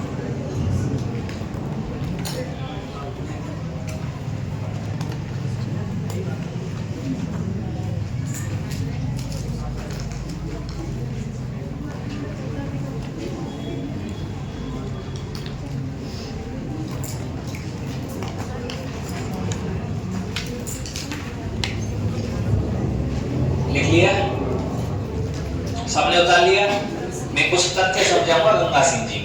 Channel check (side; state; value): both; identical; correlation 1.00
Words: लिख लिया? सबने उतार लिया? मैं कुछ तथ्य समझाऊंगा गंगा सिंह जी